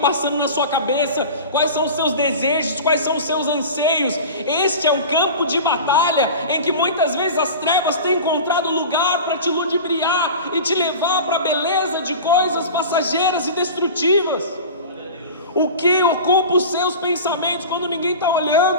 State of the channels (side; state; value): both; inverted; correlation -0.34